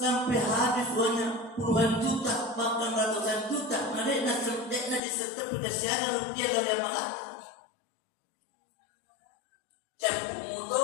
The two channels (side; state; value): right; drops out; at 5.0 s